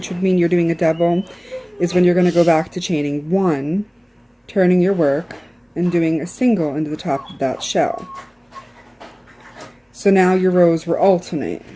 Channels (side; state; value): both; identical; correlation 1.00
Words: would mean you're doing a double, is when you're going to go back to chaining 1, turning your work, and doing a single into the top of that shell. So now your rows will alternate.